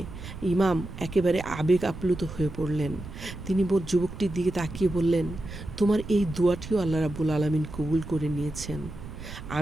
ইমাম একেবারে আবেগ আপ্লুত হয়ে পড়লেন। তিনি যুবকটির দিকে তাকিয়ে বললেন, তোমার এই দোয়াটিও আল্লাহ রাব্বুল আলামিন কবুল করে নিয়েছেন।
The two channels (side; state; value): right; noise; rumble, 12 dB below the sound